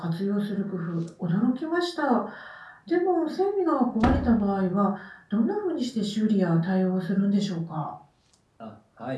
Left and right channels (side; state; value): both; identical; correlation 1.00